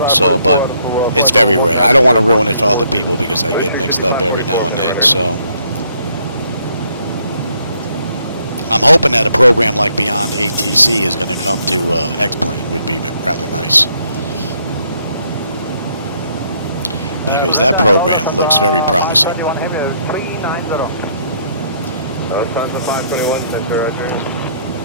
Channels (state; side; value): inverted; both; correlation -0.69